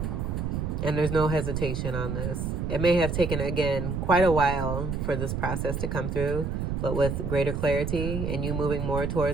And there's no hesitation on this. It may have taken, again, quite a while for this process to come through, but with greater clarity and you moving more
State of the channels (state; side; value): noise; right; rumble, 2 dB below the sound